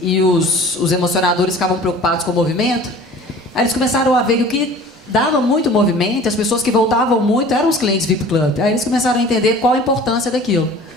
e os emocionadores ficavam preocupados com o movimento. Aí eles começaram a ver que o que dava muito movimento, as pessoas que voltavam muito eram os clientes VIP Club. Aí eles começaram a entender qual a importância daquilo.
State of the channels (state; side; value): normal; both; correlation 0.45